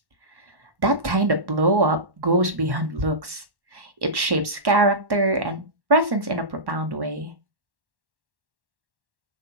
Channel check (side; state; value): left; late; 1.1 ms